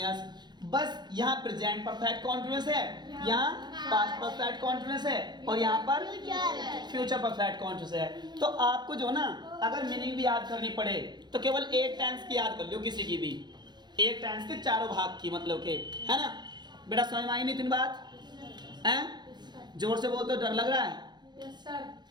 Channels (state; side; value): late; left; 0.21 ms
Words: बस यहाँ प्रेजेंट परफेक्ट कॉन्टिन्यूअस है, यहाँ पास्ट परफेक्ट कॉन्टिन्यूअस है और यहाँ पर फ्यूचर परफेक्ट कॉन्टिन्यूअस है। तो आपको जो ना अगर मीनिंग भी याद करनी पड़े तो केवल एक टेंस की याद कर लो, किसी की भी एक टेंस के चारों भाग की, मतलब के, है ना। बेटा समझ में आई नहीं तीन बात? हैं? जोर से बोल तो डर लग रहा है? यस सर